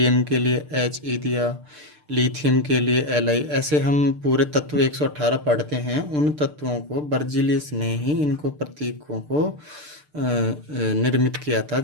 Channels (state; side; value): late; left; 6.7 ms